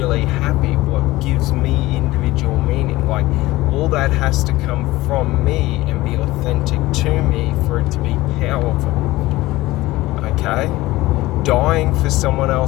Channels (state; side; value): quieter; right; 18.4 dB